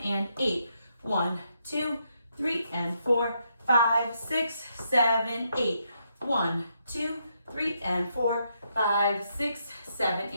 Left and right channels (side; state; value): both; inverted; correlation -0.78